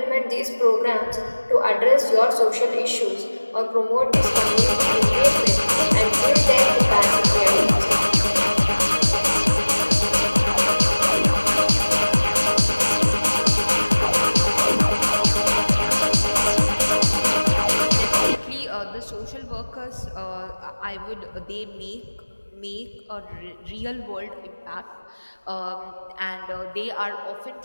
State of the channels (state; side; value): inverted; both; correlation -1.00